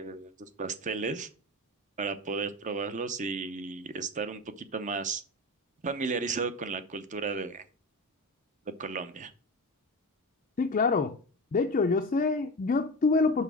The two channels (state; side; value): normal; both; correlation 0.26